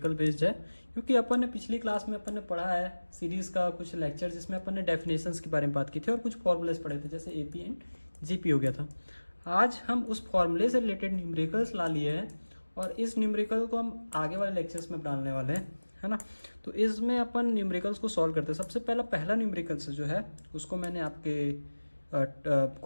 बेस्ड है, क्योंकि अपन ने पिछली क्लास में अपन ने पढ़ा है सीरीज़ का कुछ लेक्चर जिसमें अपन ने डेफिनेशंस के बारे में बात की थी और कुछ फॉर्मूलेस पढ़े थे, जैसे एपी एंड जीपी हो गया था। आज हम उस फॉर्मूले से रिलेटेड न्यूमेरिकल्स ला लिए हैं और इस न्यूमेरिकल को हम आगे वाले लेक्चर्स में डालने वाले हैं, है ना। तो इसमें अपन न्यूमेरिकल्स को सॉल्व करते हैं। सबसे पहला न्यूमेरिकल्स जो है उसको मैंने आपके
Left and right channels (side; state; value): both; inverted; correlation -1.00